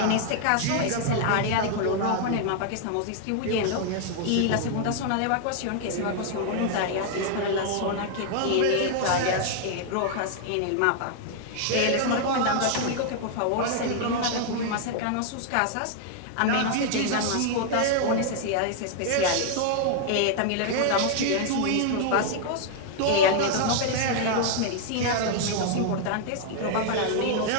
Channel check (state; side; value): different; both; correlation 0.00